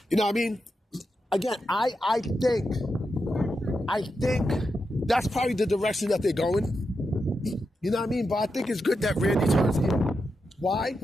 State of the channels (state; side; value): normal; both; correlation 0.87